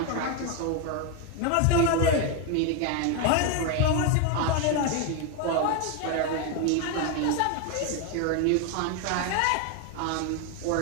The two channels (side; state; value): both; different; correlation 0.01